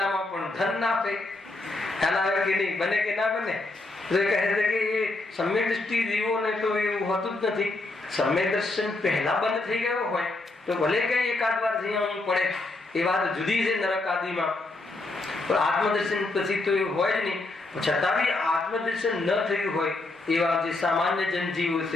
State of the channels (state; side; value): quieter; right; 3.1 dB